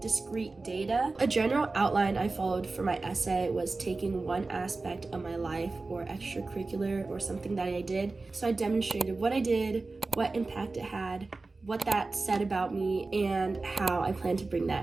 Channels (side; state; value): left; quieter; 3.6 dB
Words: discrete data. A general outline I followed for my essay was taking one aspect of my life or extracurricular or something that I did. So I demonstrated what I did, what impact it had, what that said about me, and how I plan to bring